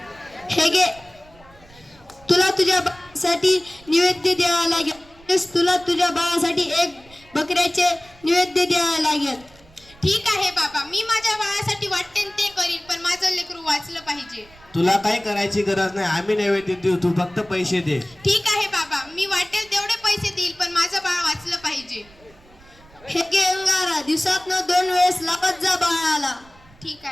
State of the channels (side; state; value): right; noise; rumble, 26 dB below the sound